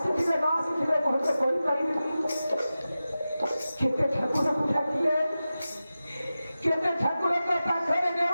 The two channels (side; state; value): both; inverted; correlation -0.94